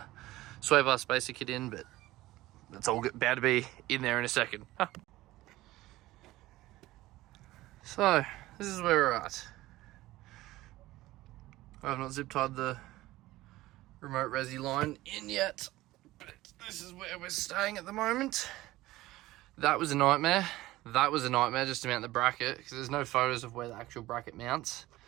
sway bar spacer kit in, but that's all about to be in there in a second. So this is where we're at. I have not zip tied the remote resi line in yet, but this is where we're staying at the moment. That was a nightmare. That was a nightmare just to mount the bracket, because there's no photos of where the actual bracket mounts.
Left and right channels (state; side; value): quieter; left; 17.4 dB